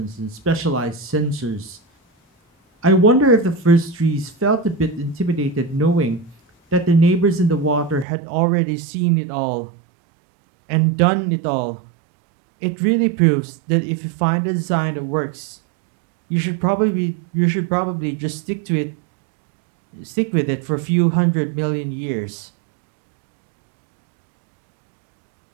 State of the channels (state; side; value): drops out; left; at 8.1 s